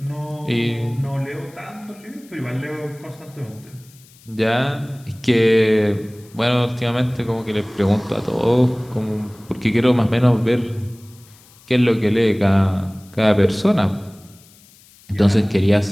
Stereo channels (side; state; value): left; noise; hiss, 26 dB below the sound